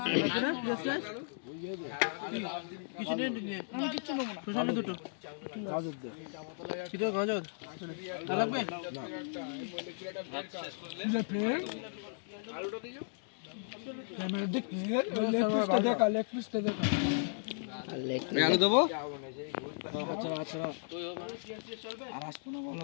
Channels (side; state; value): right; silent; digital silence